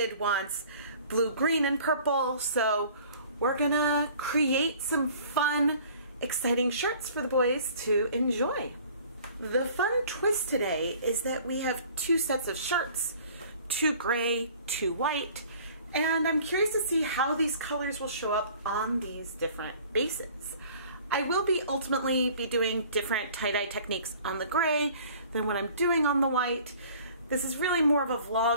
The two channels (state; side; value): inverted; both; correlation -0.50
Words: wants blue, green, and purple, so we're gonna create some fun, exciting shirts for the boys to enjoy. The fun twist today is that we have two sets of shirts, two gray, two white, and I'm curious to see how these colors will show up on these different bases. I will ultimately be doing different tie-dye techniques on the gray than what I'm doing on the white. This is really more of a